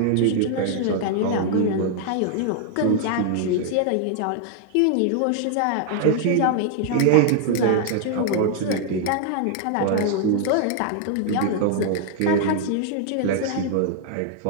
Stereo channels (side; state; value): both; different; correlation 0.00